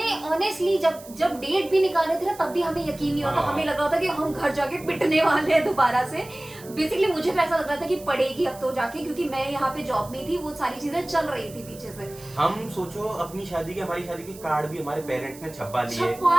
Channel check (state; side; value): noise; right; hiss, 19 dB below the sound